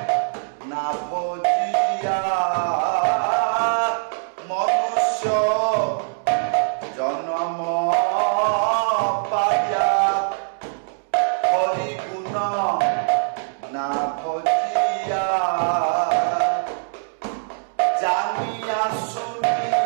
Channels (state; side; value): silent; left; digital silence